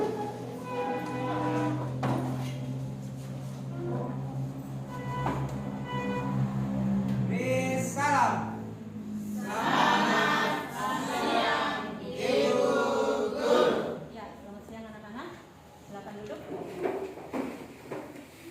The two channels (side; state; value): both; identical; correlation 1.00